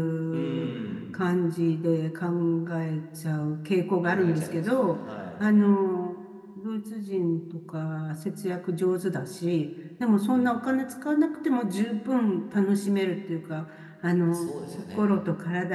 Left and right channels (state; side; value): identical; both; correlation 1.00